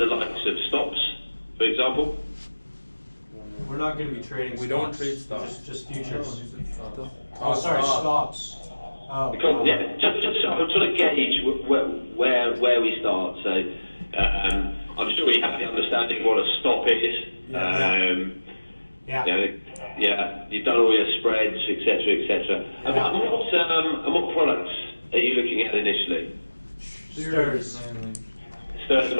likes of stops, for example? We're not going to be trading. We don't trade stocks. Just futures. Oh, sorry, stop. stops. Oh. Because, yeah, just so I'm trying to gauge where we start. So I'm sure you have the understanding of what a stop is. Yeah. Yeah, you've done all your spreads, etc., etc. Yeah. And what products are you looking at initially? Stirs. Stirs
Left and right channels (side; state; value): both; inverted; correlation -1.00